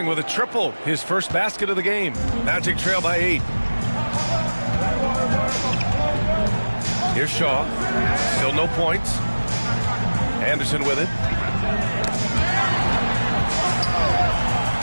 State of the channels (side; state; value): both; inverted; correlation -1.00